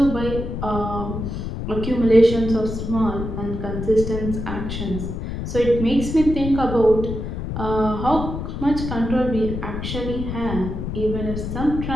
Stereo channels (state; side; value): noise; left; rumble, 5 dB below the sound